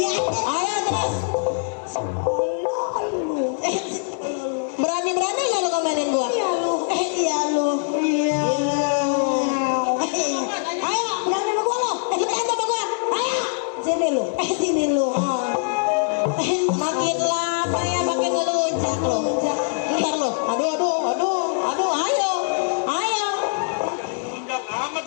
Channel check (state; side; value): silent; right; 64 dB below the other